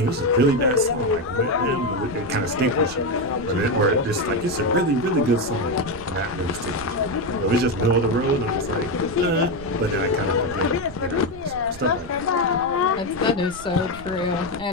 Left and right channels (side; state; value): right; noise; rumble, 17 dB below the sound